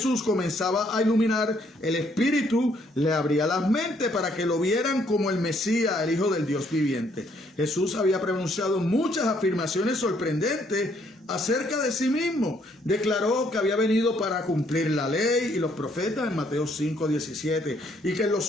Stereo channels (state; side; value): normal; both; correlation 0.68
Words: comenzaba a iluminar, el Espíritu le abría las mentes para que lo vieran como el Mesías, el Hijo del Dios viviente. Jesús había pronunciado muchas afirmaciones sorprendentes acerca de sí mismo. Declaró que había venido para cumplir la ley y los profetas en Mateo 5:17, y que en los